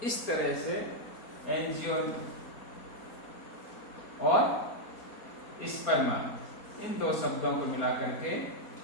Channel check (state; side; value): late; right; 4.3 ms